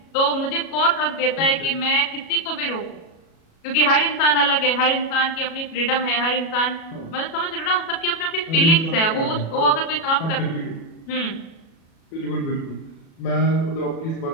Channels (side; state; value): right; late; 37 ms